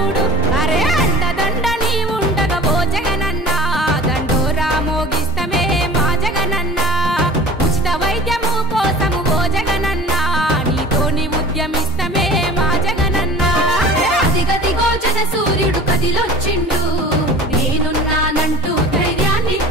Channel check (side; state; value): both; normal; correlation 0.38